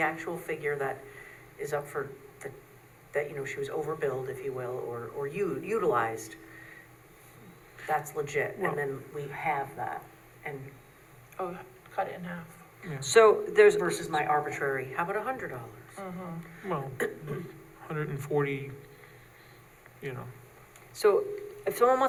actual figure that is up for, that, you know, she was overbilled, if you will, or utilized, that's legit, Well- and then we have that, and Oh, cut it in half. So there's. versus my arbitrary, how about $100? Well, 140, you know. So if someone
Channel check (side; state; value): both; identical; correlation 1.00